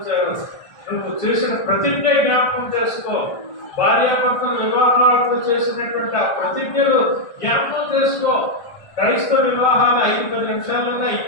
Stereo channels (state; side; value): late; right; 1.5 ms